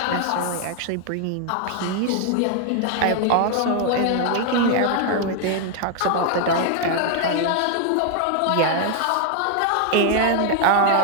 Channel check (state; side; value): different; both; correlation 0.00